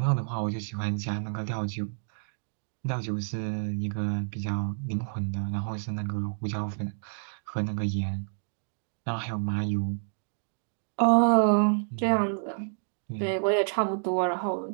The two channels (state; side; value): silent; left; digital silence